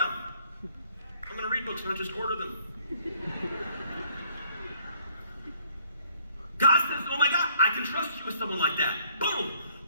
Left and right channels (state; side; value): inverted; both; correlation -0.64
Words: I'm gonna read books, not just order them. God says, oh my God, I can trust you with someone like that. Boom.